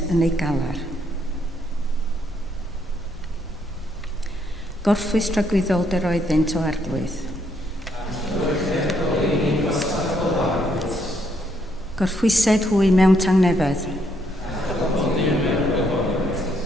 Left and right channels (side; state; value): both; normal; correlation 0.72